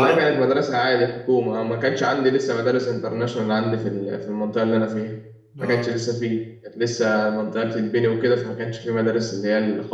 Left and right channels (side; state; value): both; identical; correlation 1.00